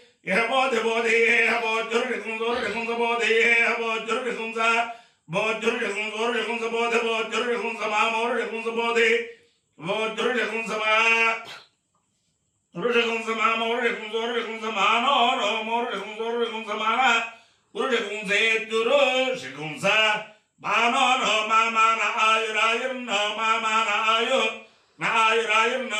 హబోధి బోధి హబోధురుడికుంస బోధి హబోధురుడికుంస బోధురుడికుంస బోధి బోధురుడికుంస మామోరుడికుంస బోధి బోధురుడికుంస మా రుడికుంస మామోరుడికుంస మానో రోమోరుడికుంస మాన గురుడికుంసేత్యురు శికుంస మానో నో మామాన ఆయురాయుర్నో మామాన ఆయు నాయురాయుర్నో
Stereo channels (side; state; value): both; identical; correlation 1.00